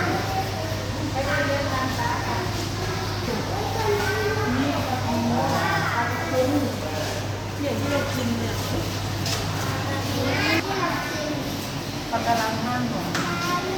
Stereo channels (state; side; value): identical; both; correlation 1.00